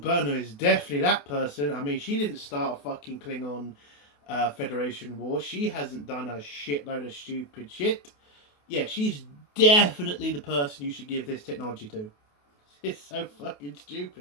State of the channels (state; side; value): late; right; 28 ms